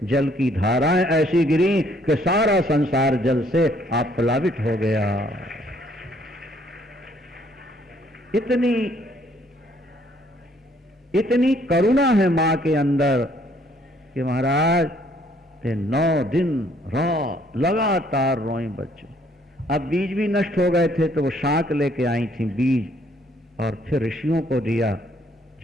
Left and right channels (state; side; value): normal; both; correlation 0.65